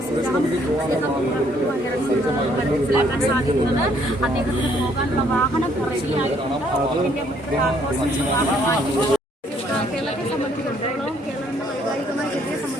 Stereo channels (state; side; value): normal; both; correlation 0.66